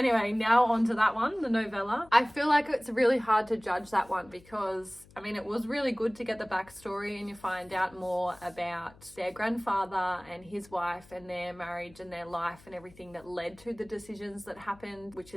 now on to that one, the novella. I feel like it's really hard to judge that one because, I mean, it was really good to get the backstory and you find out more about their grandfather and his wife and their marriage and their life and everything that led to the decisions that happened, which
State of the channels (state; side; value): noise; left; hum, 25 dB below the sound